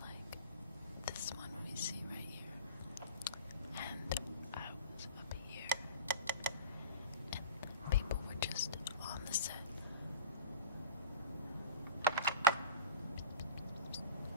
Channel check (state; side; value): inverted; both; correlation -0.32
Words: like this one we see right here. And I was up here. And people were just on the set.